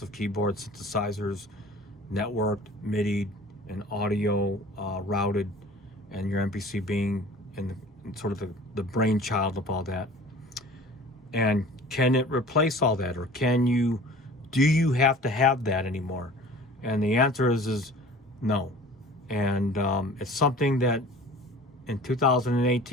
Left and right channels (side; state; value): both; normal; correlation 0.44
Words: of keyboards, synthesizers, networked, MIDI, and audio routed, and your MPC being in sort of the brainchild of all that. And can it replace all that, or do you have to have that anymore? And the answer is no. And it's something that in